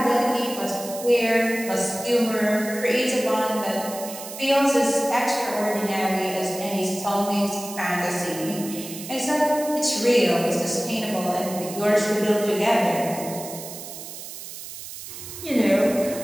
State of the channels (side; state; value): right; noise; hiss, 11 dB below the sound